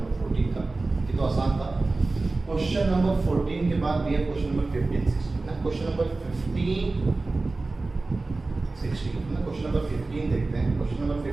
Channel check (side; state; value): left; quieter; 3.4 dB